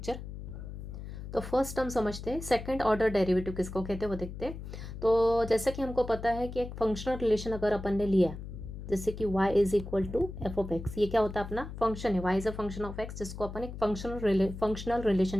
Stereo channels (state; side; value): noise; left; hum, 10 dB below the sound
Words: तो फर्स्ट हम समझते हैं सेकंड ऑर्डर डेरिवेटिव किसको कहते हैं वो देखते हैं। तो जैसे कि हमको पता है कि एक फंक्शनल रिलेशन अगर अपन ने लिया, जैसे कि y is equal to F of X, ये क्या होता है अपना फंक्शन है, y is a function of x, जिसको अपन एक फंक्शनल